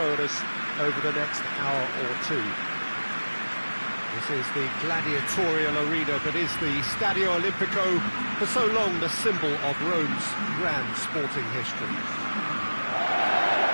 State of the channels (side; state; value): both; inverted; correlation -1.00